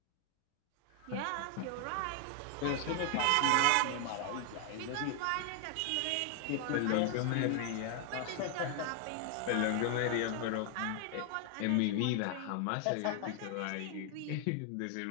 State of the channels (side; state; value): both; different; correlation 0.00